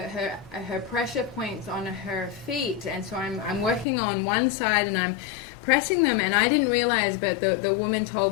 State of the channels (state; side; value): drops out; right; at 3.9 s